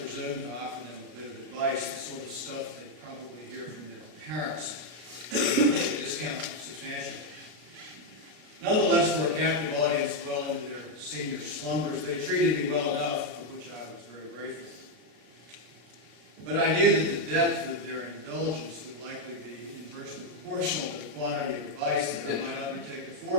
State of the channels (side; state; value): left; late; 33 ms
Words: to offer them a bit of advice, the sort of stuff they probably hear from their parents. Discount substantially. Nonetheless, for a captive audience well into their senior slumbers, they treated me well enough, for which I was very grateful. But I knew that the depth of their indulgence would likely be inversely proportional to the quantity of advice that I might undertake to